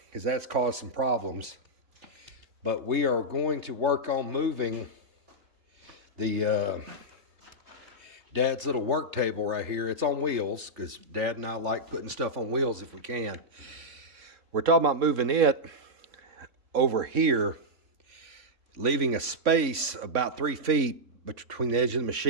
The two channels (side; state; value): left; late; 3.5 ms